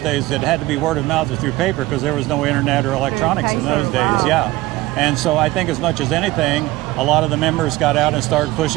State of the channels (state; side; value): quieter; left; 18.6 dB